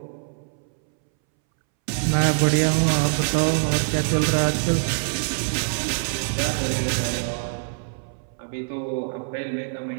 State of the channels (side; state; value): left; silent; 63 dB below the other